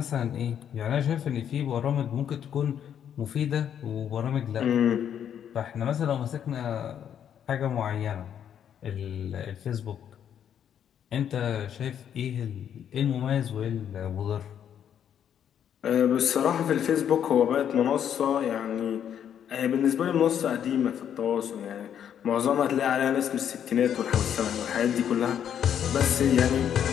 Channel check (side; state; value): right; quieter; 9.1 dB